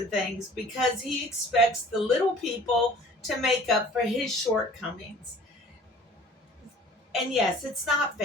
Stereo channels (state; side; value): normal; both; correlation 0.49